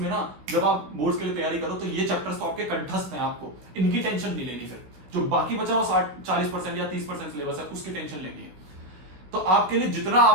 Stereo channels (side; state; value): left; late; 16 ms